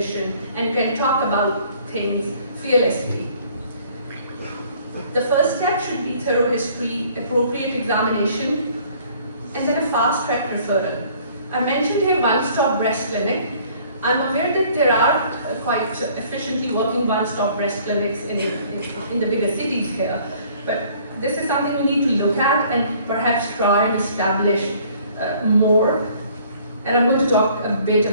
and can talk about things fearlessly. The first step should be thorough history, appropriate examination, and then a fast-track referral. I mentioned here one-stop breast clinic. I'm aware that there are quite efficiently working one-stop breast clinics in the bigger cities here, but this is something we need to look at and perhaps try and establish more. And I'm going to talk a bit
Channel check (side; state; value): both; inverted; correlation -0.57